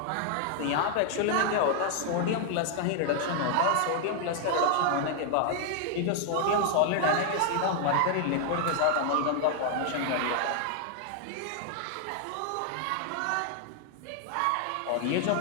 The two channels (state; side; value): different; both; correlation 0.00